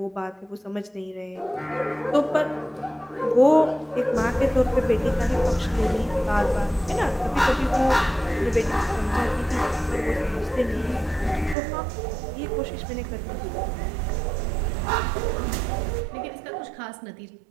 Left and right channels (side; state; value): left; drops out; at 11.6 s